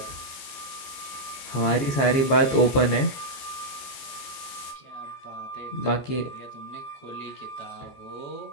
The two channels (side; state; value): right; late; 15 ms